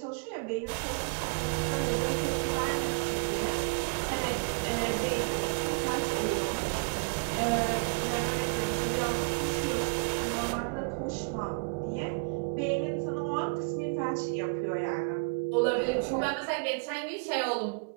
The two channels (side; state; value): left; quieter; 35.9 dB